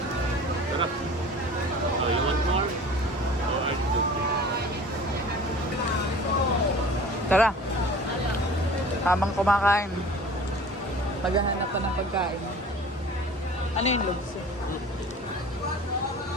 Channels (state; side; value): normal; both; correlation 0.43